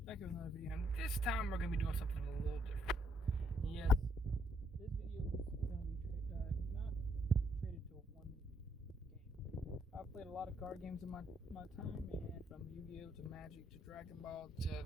back with another video, and this time we're going to be doing something a little different. Yes, this video is going to be not traded to one game. I've played a lot of card games in my time, and from YGO to Magic to Dragon Ball to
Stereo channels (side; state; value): both; normal; correlation 0.74